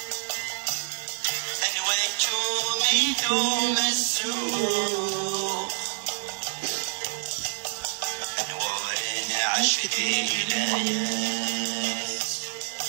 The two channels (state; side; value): silent; left; 60 dB below the other